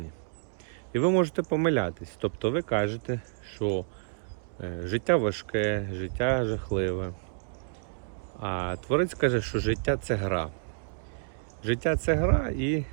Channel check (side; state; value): left; silent; digital silence